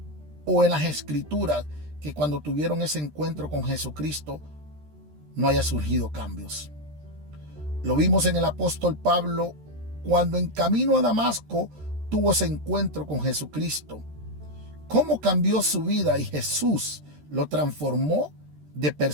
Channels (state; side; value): late; left; 13 ms